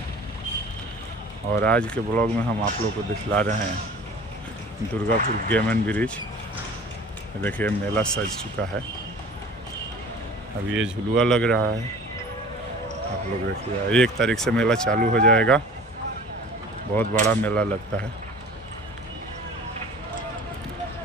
और आज के ब्लॉग में हम आप लोग को दिखला रहे हैं दुर्गापुर गेम एंड ब्रिज। देखिए, मेला सज चुका है। अब ये झुलुआ लग रहा है। आप लोग देखिए, 1 तारीख से मेला चालू हो जाएगा। बहुत बड़ा मेला लगता है।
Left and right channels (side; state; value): both; normal; correlation 0.43